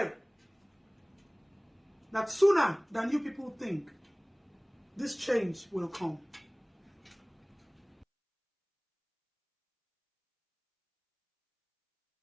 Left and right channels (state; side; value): identical; both; correlation 1.00